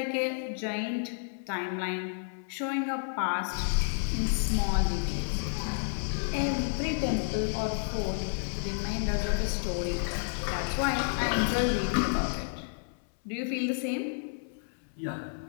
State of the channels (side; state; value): right; silent; 57 dB below the other